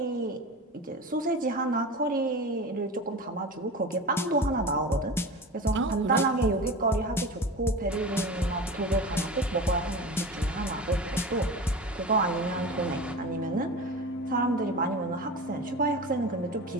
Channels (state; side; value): normal; both; correlation 0.31